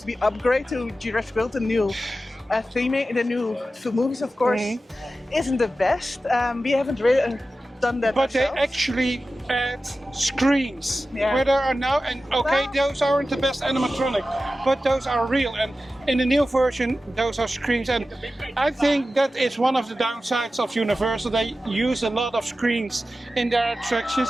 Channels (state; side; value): normal; both; correlation 0.94